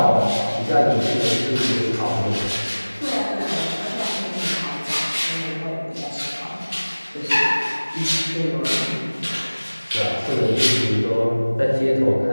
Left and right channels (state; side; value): inverted; both; correlation -1.00